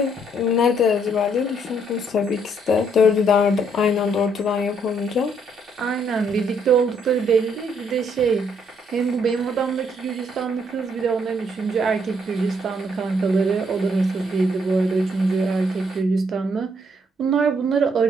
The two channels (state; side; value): normal; both; correlation 0.70